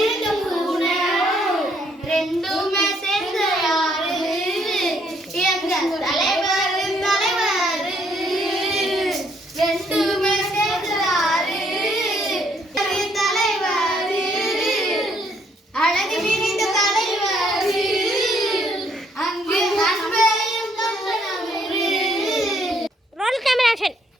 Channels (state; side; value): normal; both; correlation 0.68